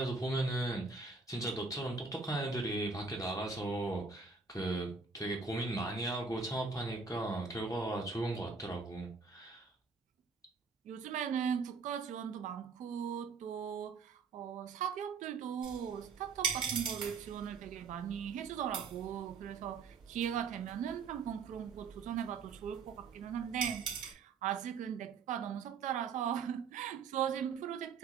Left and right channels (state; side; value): quieter; left; 4.8 dB